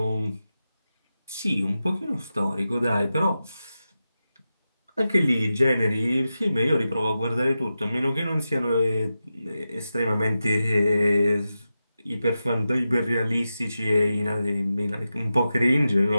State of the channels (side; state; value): both; inverted; correlation -0.91